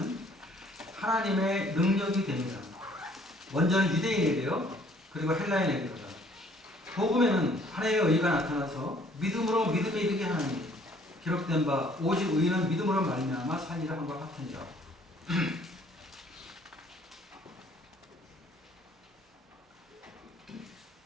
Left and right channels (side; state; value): both; normal; correlation 0.60